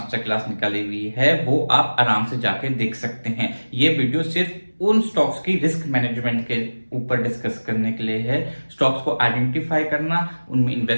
क्लास निकाली हुई है, वो आप आराम से जाके देख सकते हैं। ये वीडियो सिर्फ उन स्टॉक्स की रिस्क मैनेजमेंट के ऊपर डिस्कस करने के लिए है। स्टॉक्स को आइडेंटिफाई करना, उनमें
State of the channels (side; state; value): both; inverted; correlation -1.00